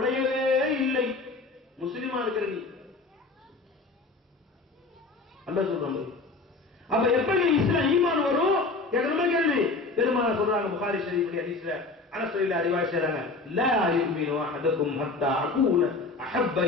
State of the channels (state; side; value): quieter; right; 3.6 dB